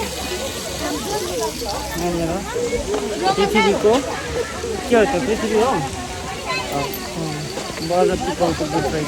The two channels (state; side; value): identical; both; correlation 1.00